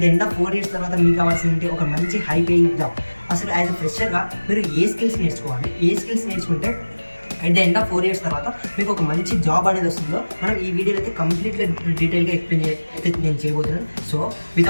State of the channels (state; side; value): inverted; both; correlation -1.00